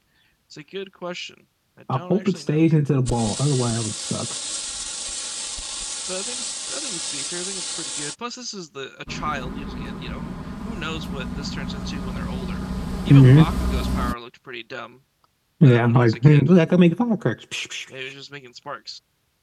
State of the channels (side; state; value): both; identical; correlation 1.00